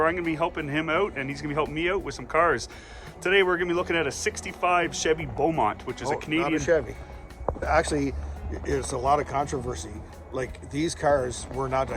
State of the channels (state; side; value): identical; both; correlation 1.00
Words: I'm going to be helping him out and he's going to be helping me out with some cars. Today we're going to be looking at a 65 Chevy Beaumont, which is a Canadian... Not a Chevy. Actually, it's a lot of controversy. Like, these cars were not